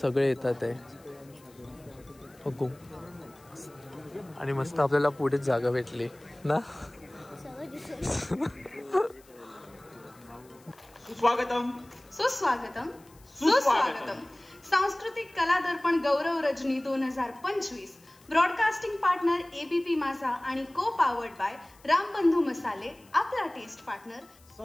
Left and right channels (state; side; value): noise; left; hiss, 28 dB below the sound